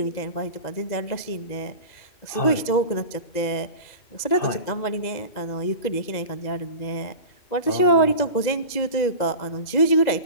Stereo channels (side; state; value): right; late; 2.0 ms